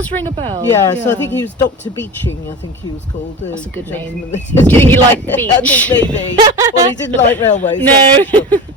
ring a bell. Yeah, so I think he was Dr. Beeching, I think he was called. That's a good name. gentleman. He liked the beach. I think maybe. Well, he didn't like railways. No. that's for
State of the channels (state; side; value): normal; both; correlation 0.31